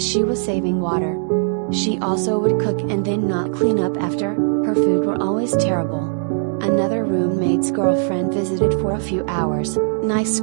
she was saving water. She also would cook and then not clean up after. Her food were always terrible. Another roommate's girlfriend visited for a few hours. Nice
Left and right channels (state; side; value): silent; left; 66 dB below the other